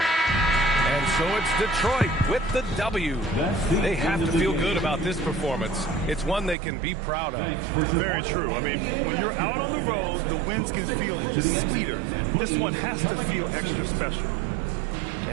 So it's Detroit with the W. They have to feel good about this performance. It's one they can be proud of. Very true. I mean, when you're out on the road, the wins can feel a little sweeter. This one has to feel extra special.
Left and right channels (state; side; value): drops out; left; at 6.6 s